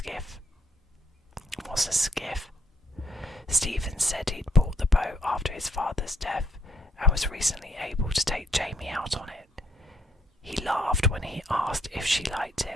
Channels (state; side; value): normal; both; correlation 0.70